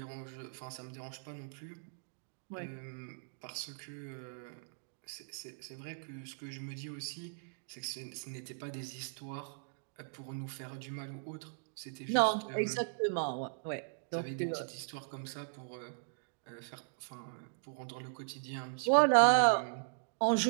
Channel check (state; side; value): silent; left; digital silence